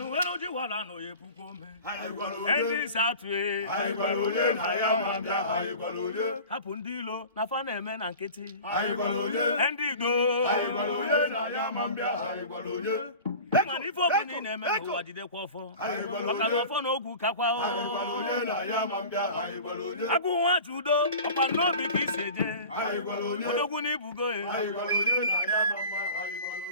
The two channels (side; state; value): both; inverted; correlation -0.38